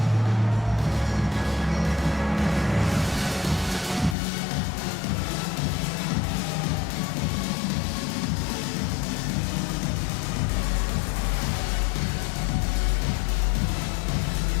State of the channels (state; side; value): drops out; right; at 4.2 s